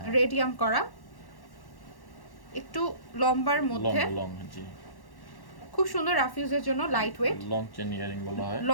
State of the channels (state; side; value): late; right; 1.1 ms